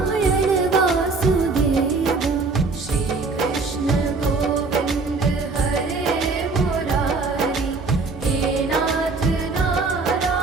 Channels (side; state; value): left; quieter; 4.0 dB